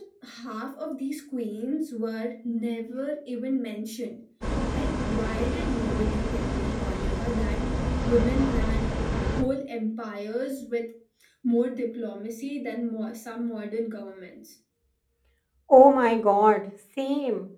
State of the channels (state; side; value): identical; both; correlation 1.00